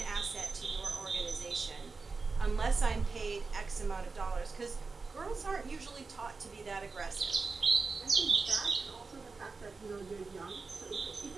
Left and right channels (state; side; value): quieter; left; 4.2 dB